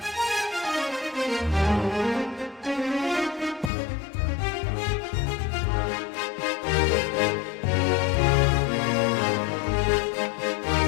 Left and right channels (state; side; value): drops out; right; at 3.7 s